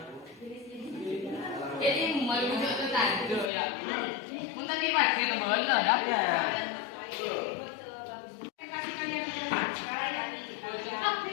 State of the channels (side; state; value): right; drops out; at 3.5 s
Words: Jadi mau bujuk tu tajuk ya. Untuk dipakai ke bola dah. Kasih kalian di depan. Sekali lagi.